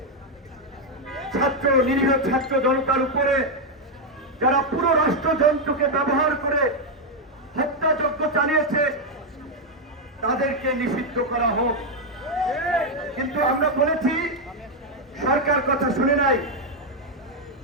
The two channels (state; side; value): normal; both; correlation 0.01